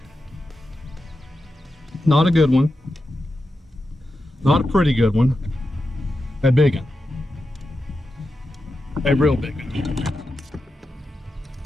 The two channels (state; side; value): normal; both; correlation 0.90